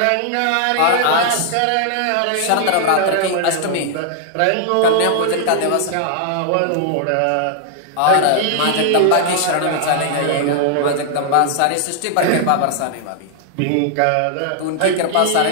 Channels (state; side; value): different; both; correlation -0.01